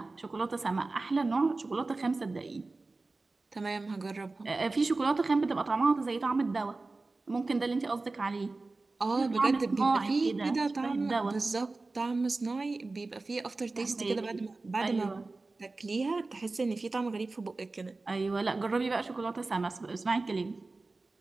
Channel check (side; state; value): left; quieter; 3.5 dB